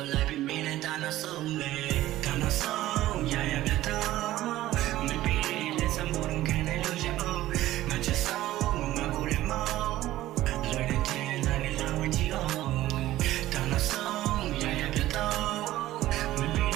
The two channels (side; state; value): left; quieter; 15.1 dB